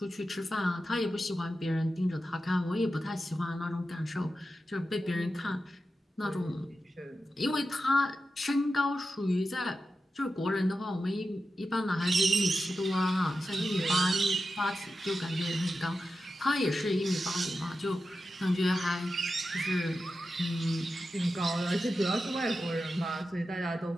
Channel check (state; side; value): normal; both; correlation 0.91